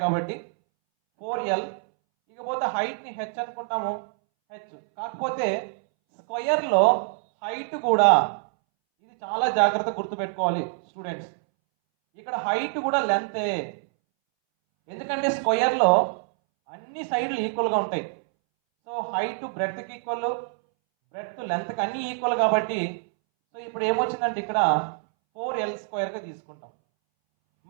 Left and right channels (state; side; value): silent; left; 61 dB below the other